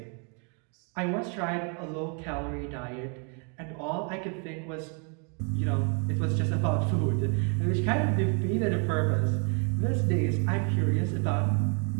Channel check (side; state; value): left; quieter; 38.3 dB